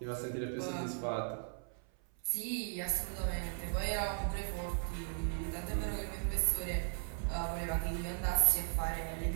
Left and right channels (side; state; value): left; silent; 53 dB below the other